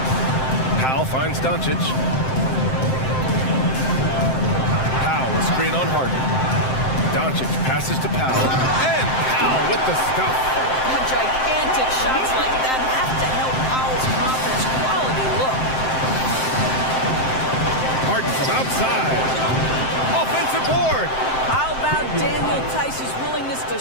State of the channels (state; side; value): late; right; 7.7 ms